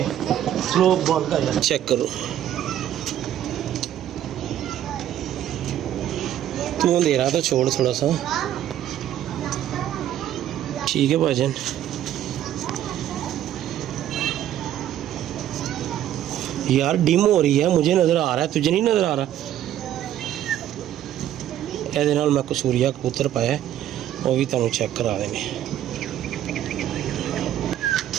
स्लो बॉल का चेक करो तू अंधेरा तो छोड़ थोड़ा सा ठीक है भाजन। यार डिम हो रही है मुझे नज़र आ रहा है तुझे नहीं नज़र आ रहा। ਇਹਦੇ ਨਾਲ मैं कसूरिया कबूतर पाया वो भी तुहानू चेक करा देंगे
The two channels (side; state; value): left; quieter; 11.6 dB